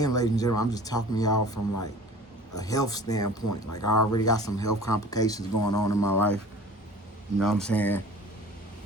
ladies and gentlemen, I'm just talking to y'all from like a health standpoint. Like, I already got some health complications going on in my life. You know what I'm saying?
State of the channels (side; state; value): both; normal; correlation 0.44